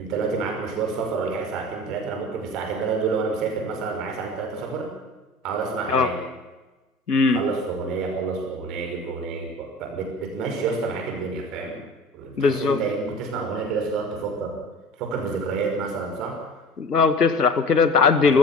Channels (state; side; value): normal; both; correlation 0.39